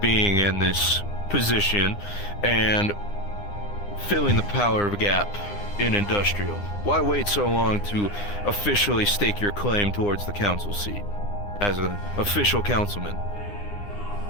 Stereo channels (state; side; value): late; right; 9.8 ms